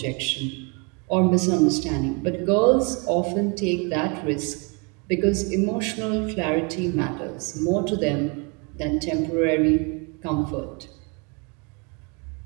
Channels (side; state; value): left; quieter; 32.7 dB